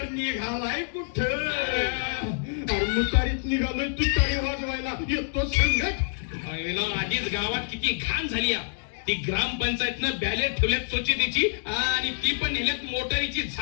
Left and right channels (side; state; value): right; silent; digital silence